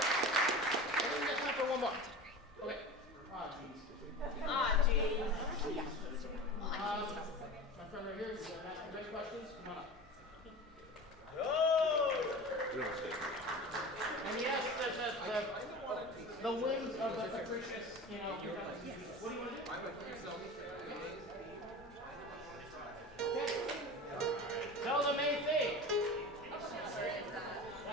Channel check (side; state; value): both; normal; correlation 0.32